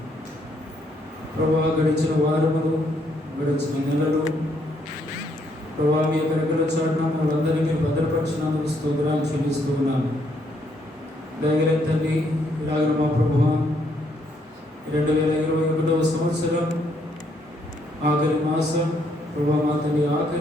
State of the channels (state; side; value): normal; both; correlation 0.72